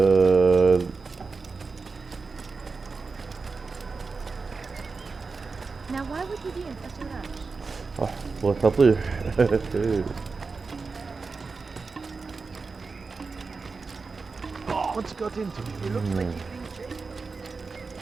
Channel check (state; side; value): quieter; left; 4.4 dB